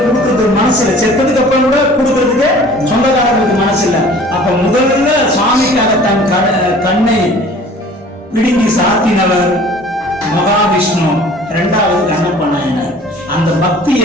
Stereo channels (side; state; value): both; normal; correlation 0.48